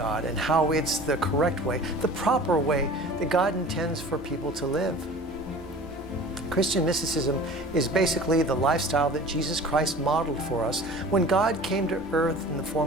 and how it's the correct way, the proper way that God intends for people to live. Christian mysticism is basically the lifestyle that Jesus Christ modeled for us when God came to earth in the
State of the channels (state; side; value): normal; both; correlation 0.41